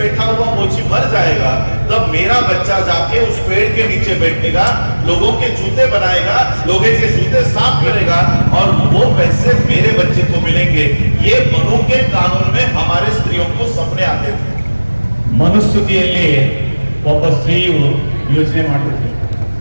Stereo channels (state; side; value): inverted; both; correlation -1.00